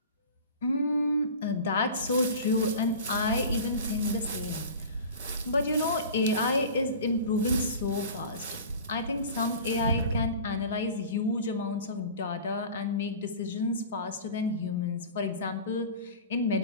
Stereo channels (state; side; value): inverted; both; correlation -0.37